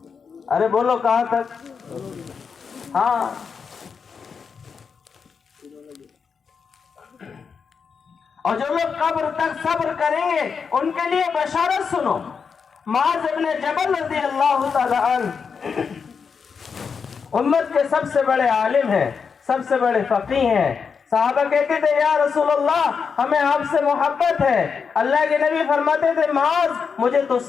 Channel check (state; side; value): quieter; right; 5.9 dB